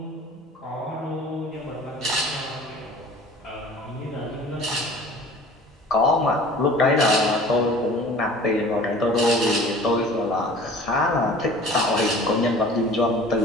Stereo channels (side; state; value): both; normal; correlation 0.45